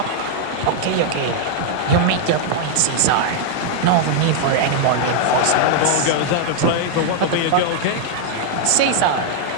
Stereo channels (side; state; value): both; different; correlation 0.00